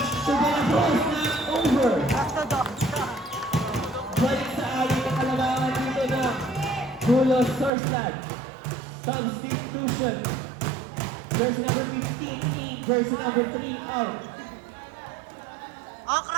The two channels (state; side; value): drops out; left; at 7.7 s